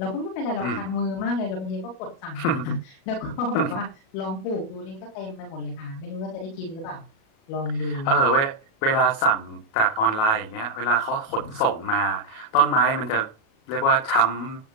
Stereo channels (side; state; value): right; late; 37 ms